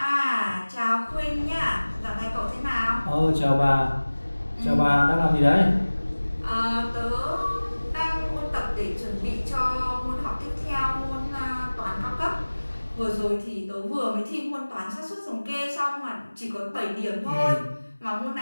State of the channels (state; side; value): inverted; both; correlation -1.00